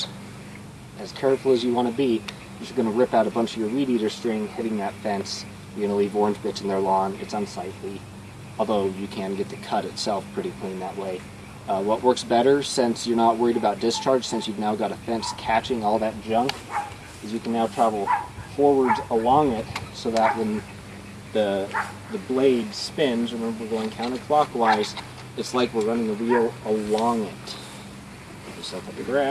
as careful as you want to be, you're going to rip out a bunch of your weed eater string hitting that fence. You're going to leave orange bits in their lawn. It's unsightly, although you can get the cut itself pretty clean that way. What works better, since you're not worried about discharge, since you've now got a fence catching all that junk, is you can now travel forwards along it so that when the blade spins, remember we're going counterclockwise, it's like we're running a wheel along it. Put yourself up the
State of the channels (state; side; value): identical; both; correlation 1.00